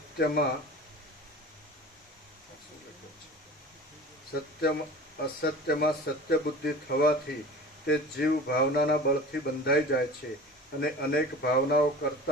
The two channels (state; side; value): normal; both; correlation 0.38